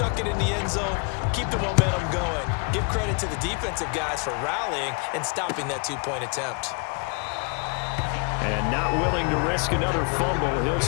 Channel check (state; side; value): quieter; right; 35.0 dB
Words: it in the end zone, keep the momentum going. Give credit to the defensive guys for rallying and stopping that 2-point attempt. And not willing to risk another fumble. He'll